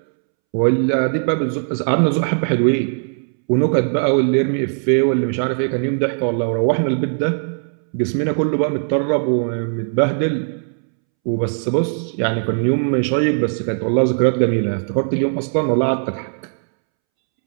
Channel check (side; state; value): left; silent; 67 dB below the other